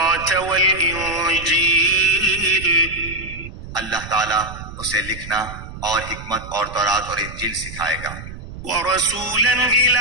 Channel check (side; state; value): right; noise; rumble, 12 dB below the sound